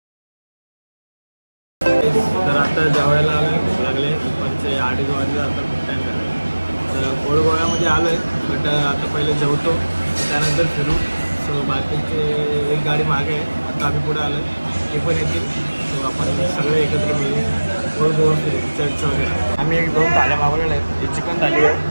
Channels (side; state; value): both; inverted; correlation -1.00